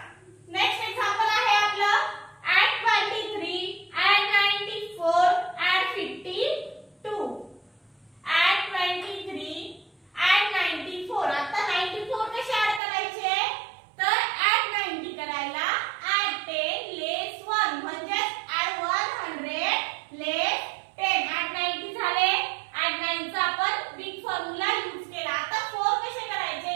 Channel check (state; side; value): drops out; left; at 12.8 s